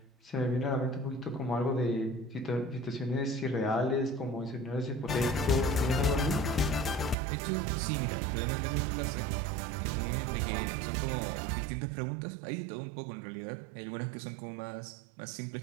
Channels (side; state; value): left; drops out; at 7.2 s